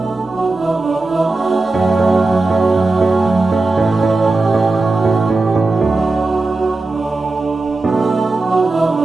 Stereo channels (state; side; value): quieter; left; 3.3 dB